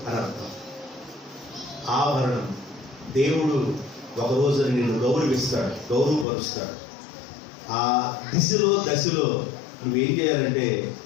అని అర్థం. ఆభరణం. దేవుడు ఒక రోజు నిన్ను గౌరవిస్తాడు, గౌరవపరుస్తాడు. ఆ దశలో నువ్వేం చేయాలంటే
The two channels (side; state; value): right; drops out; at 6.2 s